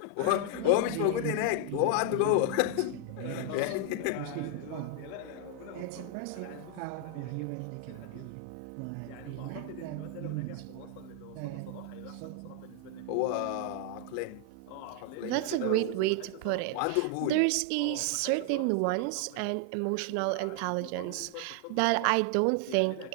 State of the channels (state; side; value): different; both; correlation 0.00